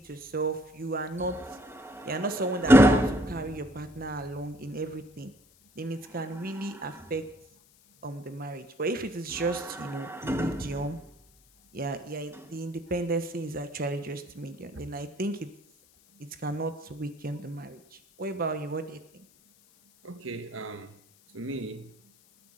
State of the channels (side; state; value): left; noise; hiss, 29 dB below the sound